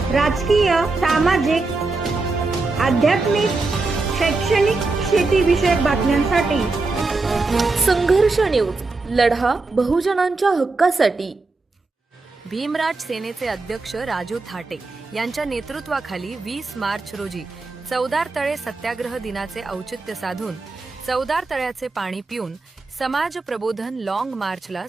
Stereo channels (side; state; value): left; quieter; 3.6 dB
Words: राजकीय, सामाजिक, आध्यात्मिक, शैक्षणिक, शेतीविषयक बातम्यांसाठी संघर्ष न्यूज, लढा बहुजनांच्या हक्कासाठी. भीमराज सेनेचे अध्यक्ष राजू थाटे यांच्या नेतृत्वाखाली 20 मार्च रोजी चौदार तळे सत्याग्रह दिनाचे औचित्य साधून चौदार तळ्याचे पाणी पिऊन समाज प्रबोधन लॉंग मार्चला